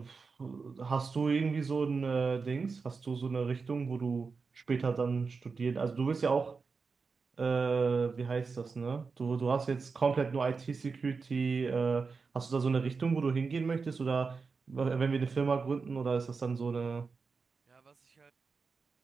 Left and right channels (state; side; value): quieter; left; 4.8 dB